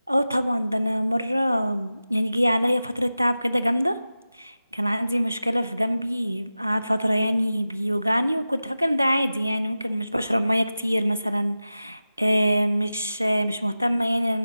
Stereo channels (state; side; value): inverted; both; correlation -0.95